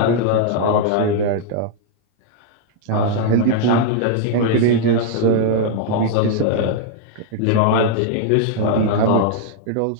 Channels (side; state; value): both; different; correlation -0.01